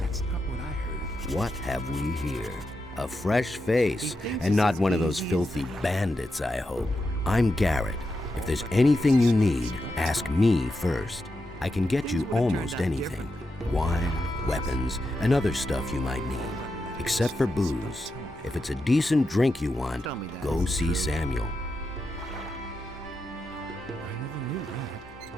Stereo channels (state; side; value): normal; both; correlation 0.87